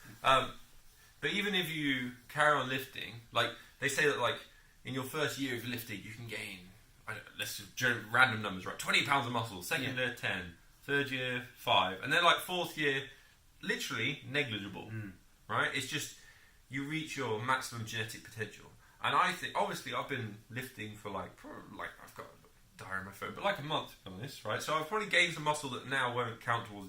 But even if you carry on lifting, like they say that, like in your first year of lifting, you can gain. Let's just random numbers, right? 20 pounds of muscle. Second year, 10. Third year, 5. And then like fourth year, literally negligible. Right? It's just you reach your maximum genetic potential. And I think, obviously, I've been lifting for like I've got a diary on my phone, but like a month, to be honest, right? So I've probably gained some muscle that now won't count towards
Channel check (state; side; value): identical; both; correlation 1.00